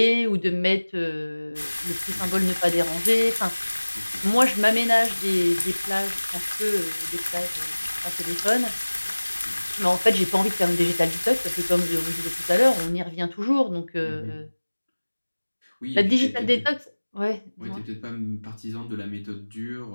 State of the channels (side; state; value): both; inverted; correlation -1.00